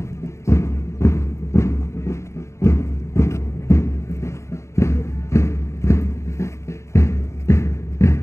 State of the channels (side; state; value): right; late; 0.14 ms